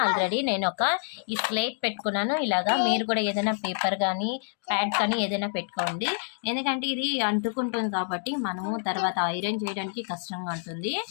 ఆల్రెడీ నేను ఈ స్లేట్ పెట్టుకున్నాను. ఇలాగా మీరు కూడా ఏదైనా పేపర్ కానీ ప్యాడ్ కానీ ఏదైనా పెట్టుకోండి, ఎందుకంటే ఇది అంటుకుంటుంది కాబట్టి మనము తర్వాత ఐరన్ చేయడానికి కష్టంగా ఉంటుంది.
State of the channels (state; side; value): silent; right; digital silence